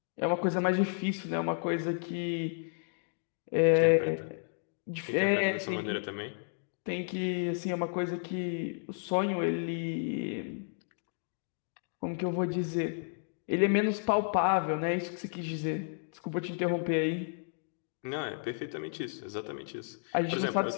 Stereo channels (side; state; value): right; silent; digital silence